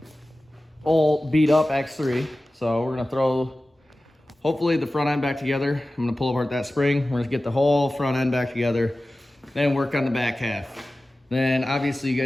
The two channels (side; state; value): both; normal; correlation 0.96